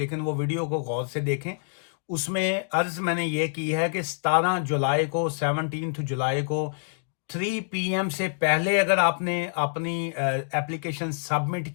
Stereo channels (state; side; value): silent; right; digital silence